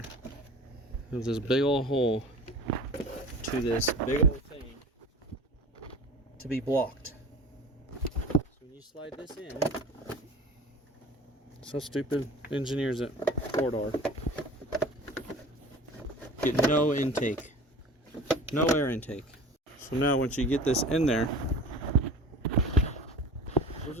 There's this big old hole to this big old thing to be blocked. So when you slide this in, so stupid engineers at Ford are. Get no intake, no air intake. So now once you get this in there, where's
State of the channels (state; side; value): normal; both; correlation 0.40